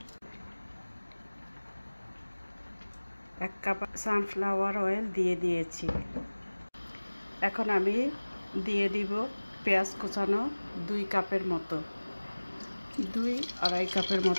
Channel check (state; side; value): inverted; both; correlation -1.00